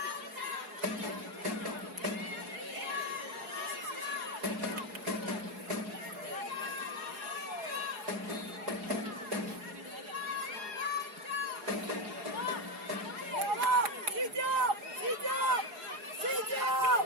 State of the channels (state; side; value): late; left; 4.8 ms